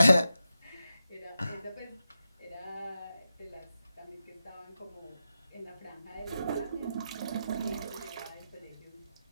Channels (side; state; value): both; inverted; correlation -0.90